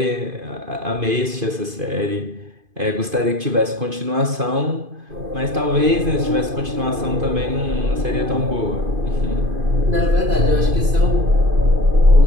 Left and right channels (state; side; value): late; left; 2.5 ms